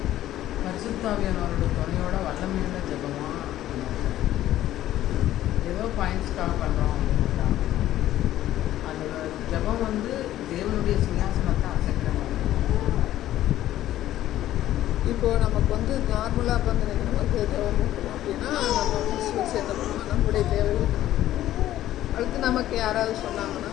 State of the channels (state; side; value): quieter; right; 13.4 dB